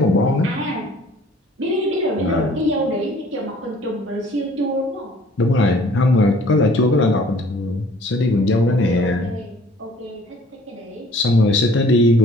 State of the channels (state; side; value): normal; both; correlation 0.54